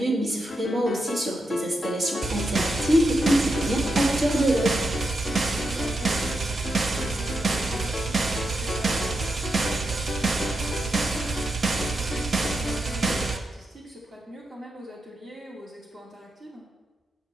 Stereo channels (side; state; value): both; normal; correlation 0.85